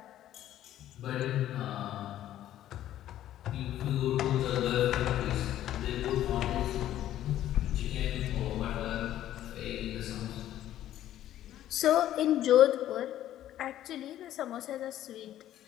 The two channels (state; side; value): quieter; right; 12.5 dB